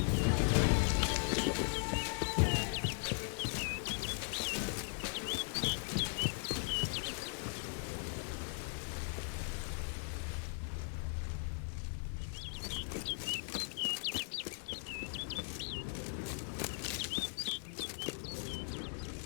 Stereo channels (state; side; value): silent; right; 52 dB below the other